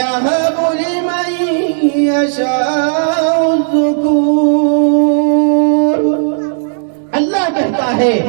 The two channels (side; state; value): left; silent; digital silence